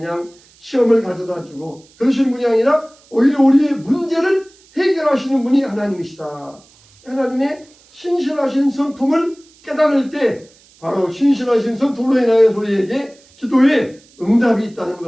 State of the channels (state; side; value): noise; right; hiss, 29 dB below the sound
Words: 시험을 가져다 주고 그러시는 분이 아니라 오히려 우리의 문제를 해결하시는 분이 하나님이시다. 하나님의 신실하신 성품을 깨달을 때 바로 신실하신 성품으로 인하여 우리에게 기도에 응답이 있다는